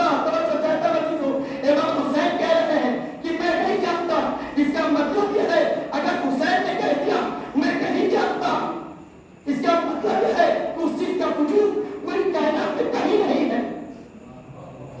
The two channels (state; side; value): identical; both; correlation 1.00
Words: توجہ چاہتا بچی ہو، امام حسین کہہ رہے ہیں کہ میں نہیں جانتا، اس کا مطلب یہ ہے اگر حسین نے کہہ دیا میں نہیں جانتا، اس کا مطلب یہ ہے کہ اس چیز کا وجود پوری کائنات میں کہیں نہیں ہے،